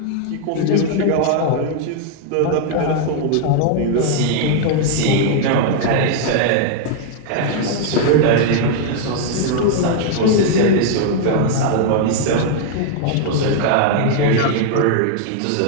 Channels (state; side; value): different; both; correlation 0.00